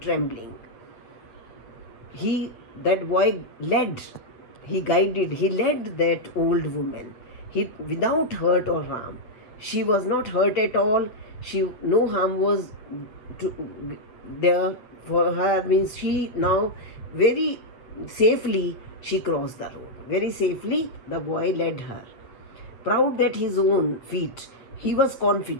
That boy led. He led that old woman. Without hurt or harm. She was not hurt at all. No harm was there for her. Means she now very safely she crossed the road. Very safely the boy led her. Proud that his own feet, he was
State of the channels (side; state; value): right; late; 8.3 ms